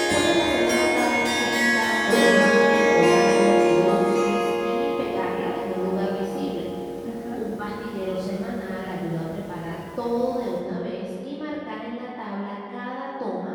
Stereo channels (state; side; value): identical; both; correlation 1.00